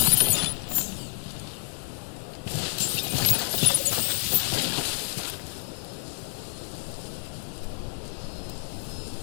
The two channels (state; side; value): silent; right; 59 dB below the other